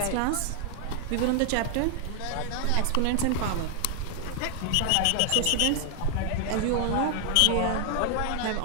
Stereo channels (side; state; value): both; different; correlation 0.00